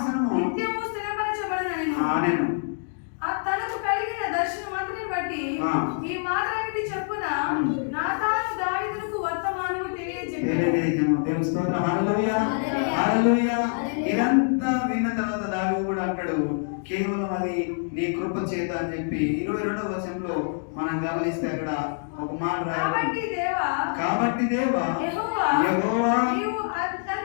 నిత్యము స్థిరపరచబడనను. ఆమేన్. తనకు కలిగిన దర్శనం అంతటిని బట్టి ఈ మాటలన్నిటి చెప్పున నాతాను దావీదుకు వర్తమానము తెలియజెప్పాను. దేవుని స్తోత్రం, హల్లెలూయా, హల్లెలూయా. ఇదంతా విన్న తర్వాత దావీదు కూడా అంటాడు, కేవలం అది నీ కృప చేత అని చెప్పి 22వ వచనంలో మనం గమనిస్తే అక్కడ ఒక మాట రాయబడింది. కాబట్టి దేవా యెహోవా నీవు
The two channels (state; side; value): silent; right; digital silence